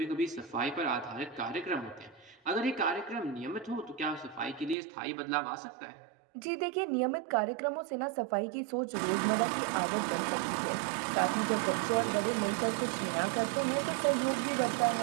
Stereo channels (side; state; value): left; drops out; at 4.8 s